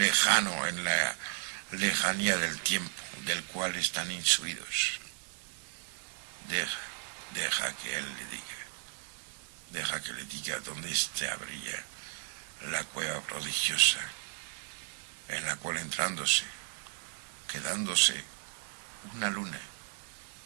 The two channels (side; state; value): left; silent; 55 dB below the other